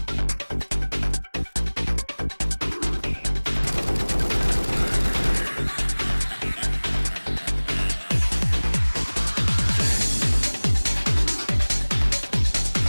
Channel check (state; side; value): inverted; both; correlation -1.00